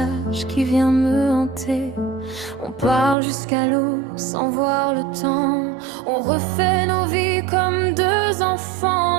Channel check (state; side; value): drops out; left; at 3.2 s